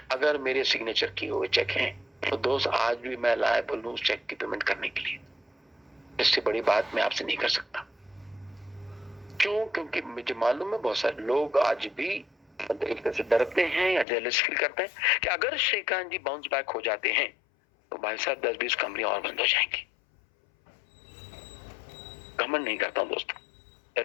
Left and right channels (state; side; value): drops out; right; at 14.1 s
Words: अगर मेरे सिग्नेचर किए हुए चेक हैं तो दोस्त आज भी मैं लायबल हूं उस चेक की पेमेंट करने के लिए। इससे बड़ी बात मैं आपसे नहीं कर सकता। क्यों? क्योंकि मुझे मालूम है बहुत सारे लोग आज भी एक तरह से डरते हैं या जेलस फील करते हैं कि अगर श्रीकांत जी बाउंस बैक हो जाते हैं तो भाई साहब 10-20 कंपनी और बंद हो जाएंगी। घमंड नहीं करता हूं दोस्तों,